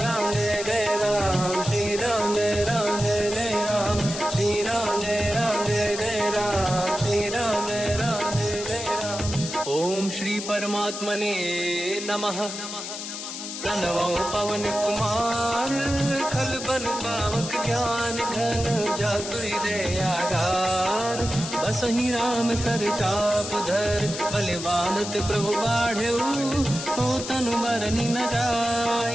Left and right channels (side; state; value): left; noise; hiss, 8 dB below the sound